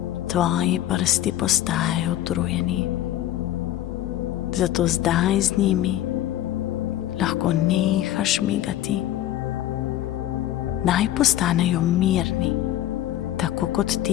Tvoji prsti postajajo utrujeni, zato zdaj z njimi lahko nehaš migati. Naj postanejo mirni, tako kot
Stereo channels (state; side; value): quieter; right; 13.1 dB